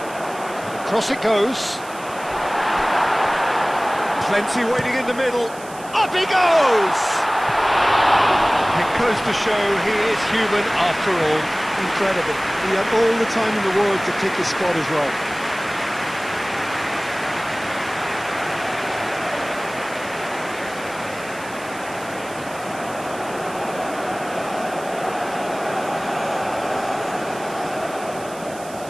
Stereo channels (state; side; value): noise; right; hiss, 18 dB below the sound